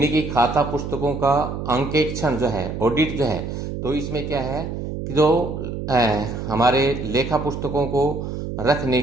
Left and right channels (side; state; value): right; noise; hum, 6 dB below the sound